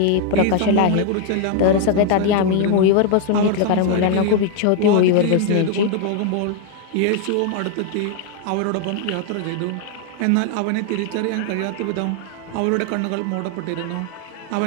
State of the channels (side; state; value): both; different; correlation 0.00